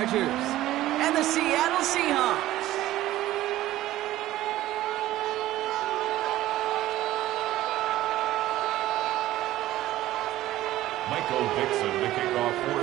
Chargers and the Seattle Seahawks. Michael Dixon to kick off for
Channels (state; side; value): quieter; left; 15.1 dB